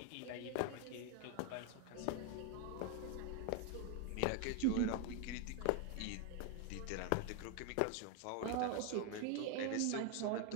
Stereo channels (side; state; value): both; different; correlation 0.01